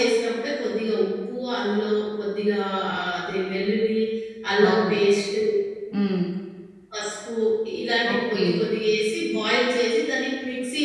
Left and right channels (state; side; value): identical; both; correlation 1.00